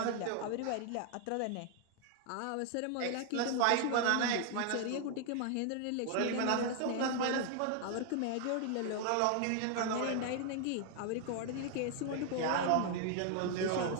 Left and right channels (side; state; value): both; different; correlation 0.00